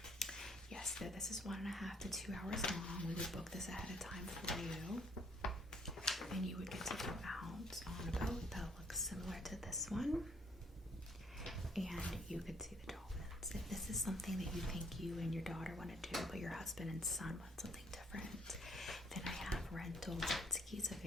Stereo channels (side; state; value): both; normal; correlation 0.64